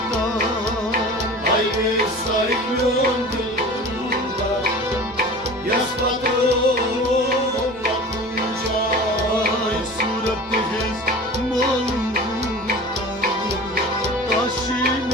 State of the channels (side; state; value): right; noise; rumble, 25 dB below the sound